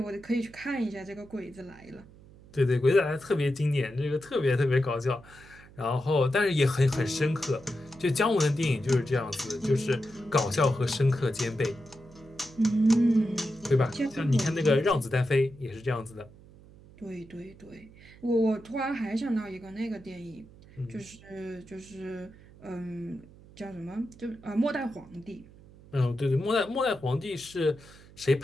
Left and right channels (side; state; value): right; noise; hum, 22 dB below the sound